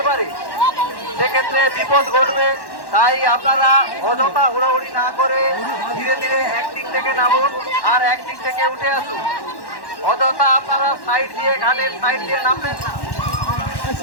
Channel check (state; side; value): late; right; 1.1 ms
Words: পারে, সেক্ষেত্রে বিপদ ঘটবে। তাই আপনারা অযথা হুড়োহুড়ি না করে ধীরে ধীরে একদিক থেকে নামুন আর একদিক থেকে উঠে আসুন। অযথা আপনারা সাইড দিয়ে ঘাটের সাইড দিয়ে নামবেন না।